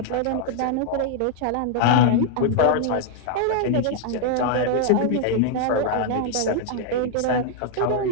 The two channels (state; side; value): different; both; correlation 0.00